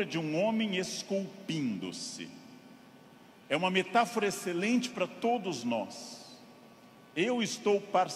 de um homem esculpindo-se. É uma metáfora excelente para todos nós. Eu estou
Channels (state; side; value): identical; both; correlation 1.00